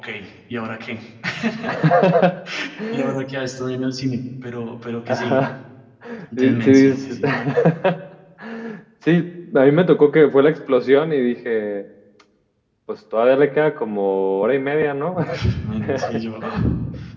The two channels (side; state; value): both; identical; correlation 1.00